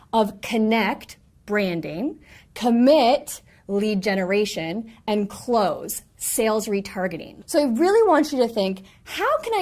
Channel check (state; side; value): identical; both; correlation 1.00